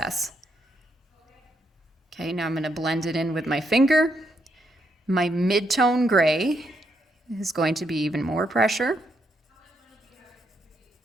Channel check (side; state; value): both; normal; correlation 0.78